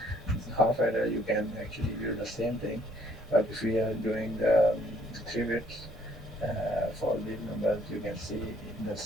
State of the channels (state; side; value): normal; both; correlation 0.64